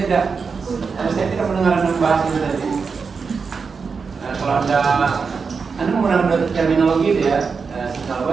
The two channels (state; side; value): quieter; left; 5.3 dB